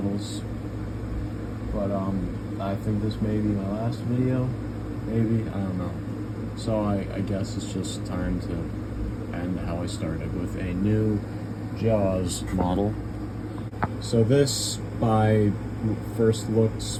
But I think this may be my last video, maybe, I don't know. So I guess it's just time to end how I started with a new Jaws model. So this, by first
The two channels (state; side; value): identical; both; correlation 1.00